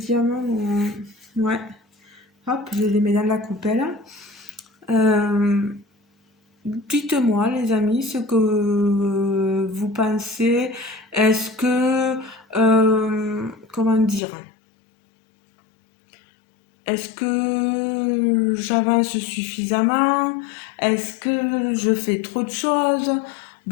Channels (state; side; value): drops out; right; at 14.2 s